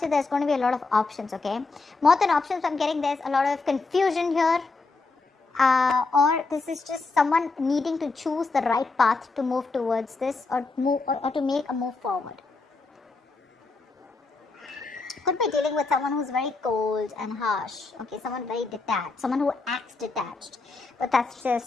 there's going to be a lot of options, okay? More than options, I'm getting there's a lot of confusion here. Or this is just someone needing to choose the right path to move towards this or to make a move forward. Could be dealing with someone who's very cold and harsh, okay, someone very detached, someone who acts detached, but that's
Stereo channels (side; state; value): right; quieter; 3.8 dB